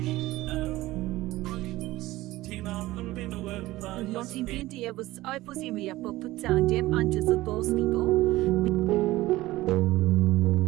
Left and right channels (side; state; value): left; quieter; 17.5 dB